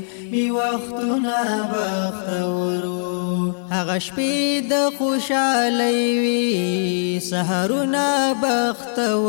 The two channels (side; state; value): right; silent; digital silence